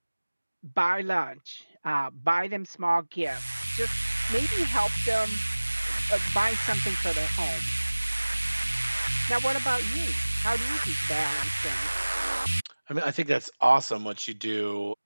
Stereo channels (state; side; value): inverted; both; correlation -1.00